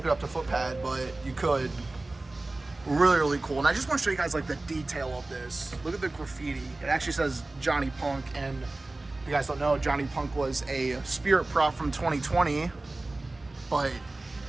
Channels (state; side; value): quieter; left; 3.0 dB